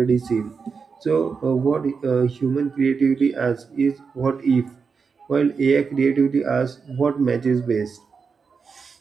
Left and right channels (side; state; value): left; quieter; 5.4 dB